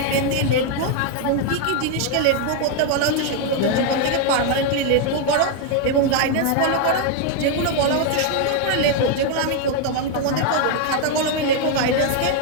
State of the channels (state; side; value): different; both; correlation 0.01